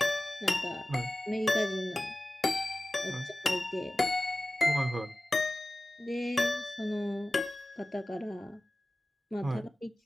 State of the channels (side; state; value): both; normal; correlation 0.96